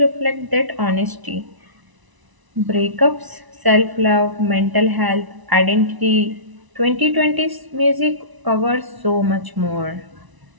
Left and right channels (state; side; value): late; left; 1.0 ms